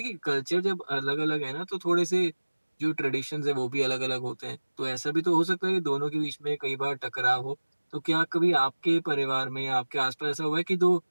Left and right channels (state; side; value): inverted; both; correlation -1.00